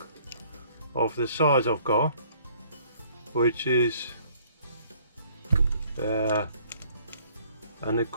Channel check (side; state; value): both; inverted; correlation -0.59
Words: of the size I've got, which is and it